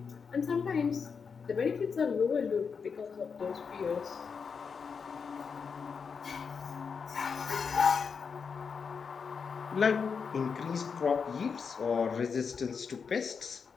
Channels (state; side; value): quieter; right; 5.9 dB